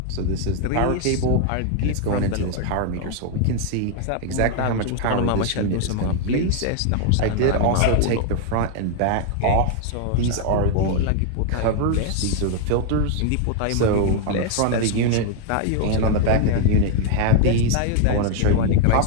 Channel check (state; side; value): different; both; correlation 0.00